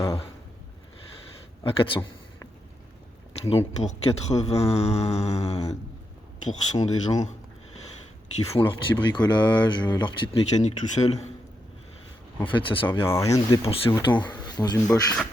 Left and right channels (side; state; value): both; normal; correlation 0.83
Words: 400. Donc pour 80% des gens qui font leur petit bricolage, leur petite mécanique tout seul, en fait ça servira à rien de dépenser autant dans une Bosch.